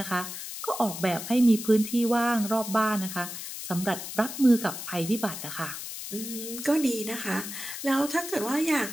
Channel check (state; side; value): noise; left; hiss, 8 dB below the sound